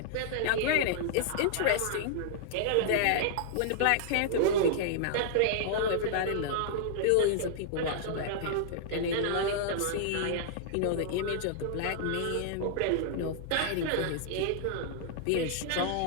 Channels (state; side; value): different; both; correlation -0.01